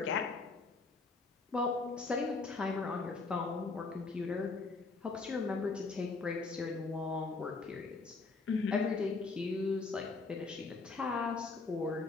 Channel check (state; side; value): quieter; right; 4.0 dB